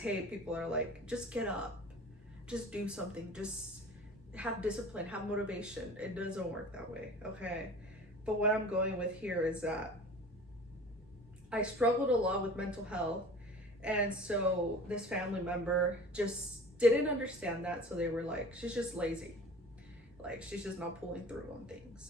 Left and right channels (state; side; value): normal; both; correlation 0.42